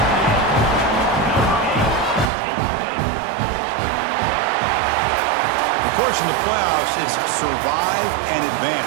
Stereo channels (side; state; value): left; drops out; at 2.3 s